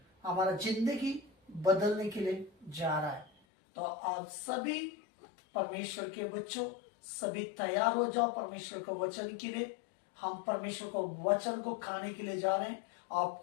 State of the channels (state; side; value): drops out; right; at 3.3 s